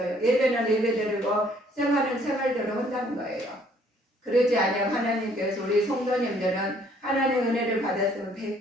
예배는 예배대로 생활은 생활대로 한다는 거예요. 그러지 않으면 하나님께서 우리 성도님들은 하나님의 은혜를 받았으면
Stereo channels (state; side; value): normal; both; correlation 0.62